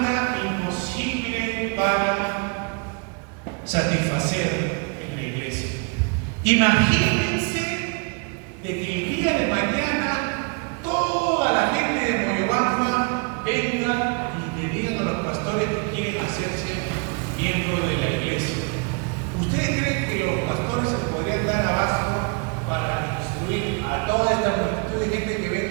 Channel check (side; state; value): left; quieter; 34.1 dB